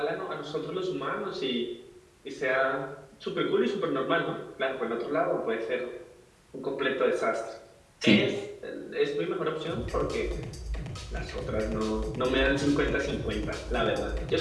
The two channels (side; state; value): both; identical; correlation 1.00